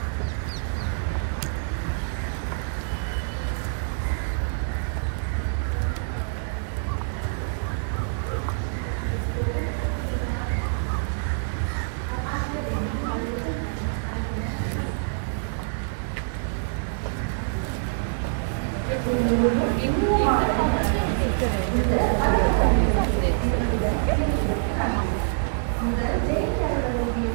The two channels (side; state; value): left; silent; 61 dB below the other